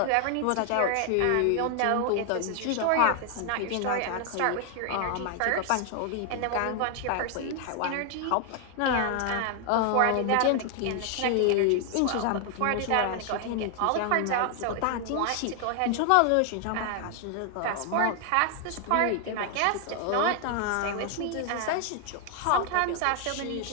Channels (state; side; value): different; both; correlation 0.00